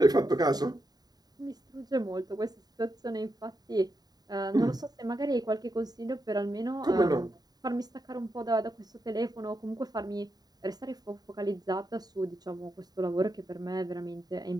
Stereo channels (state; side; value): late; left; 0.19 ms